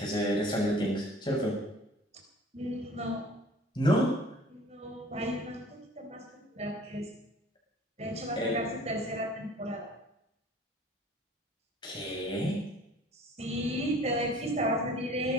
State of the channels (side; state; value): both; normal; correlation 0.49